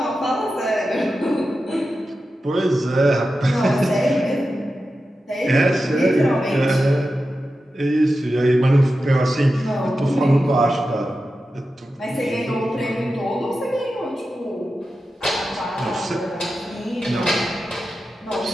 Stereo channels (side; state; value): both; normal; correlation 0.91